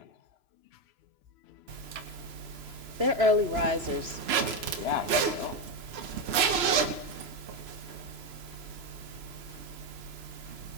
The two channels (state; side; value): late; left; 3.0 ms